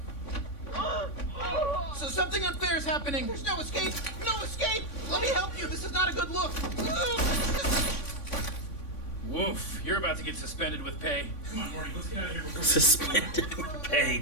So something unfair is happening. There's no escape. No escape. Let me help you. This is not a good look. Woof. You're about to get suspended with pay. Come on, Morty. Let's get out of here before Suspended with pay,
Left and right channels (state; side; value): late; right; 3.5 ms